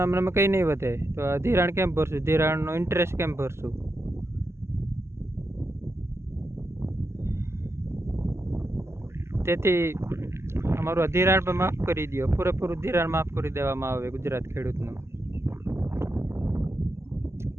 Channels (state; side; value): late; left; 0.13 ms